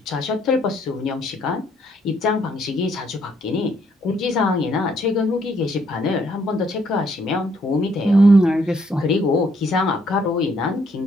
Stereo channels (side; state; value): both; normal; correlation 0.69